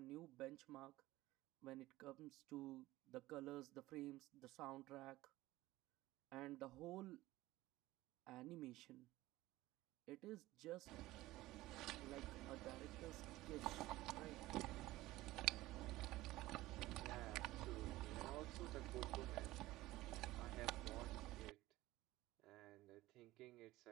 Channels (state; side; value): quieter; left; 17.6 dB